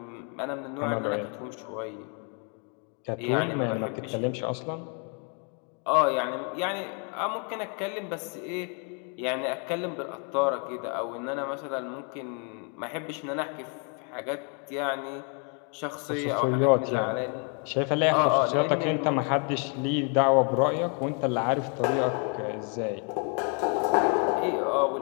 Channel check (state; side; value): quieter; right; 39.2 dB